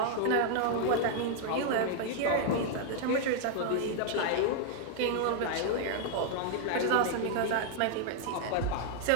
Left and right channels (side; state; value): both; different; correlation 0.00